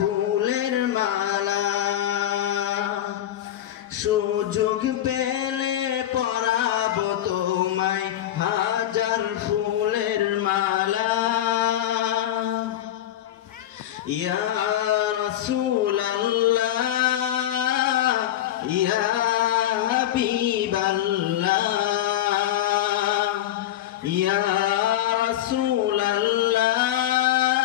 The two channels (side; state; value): right; quieter; 12.3 dB